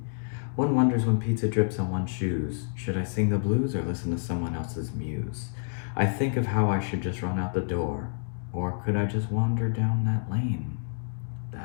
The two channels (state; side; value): silent; right; 59 dB below the other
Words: One wonders when pizza drips on one's shoes, should I sing the blues or listen to someone else's muse? I think of how I should just run out the door, or could I just wander down that lane,